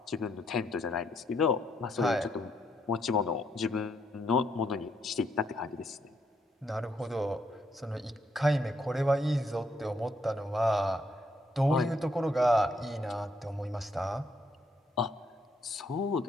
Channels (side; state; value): both; normal; correlation 0.74